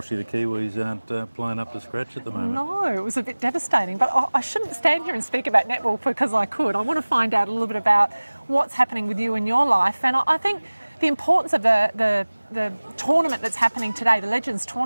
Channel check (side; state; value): both; inverted; correlation -1.00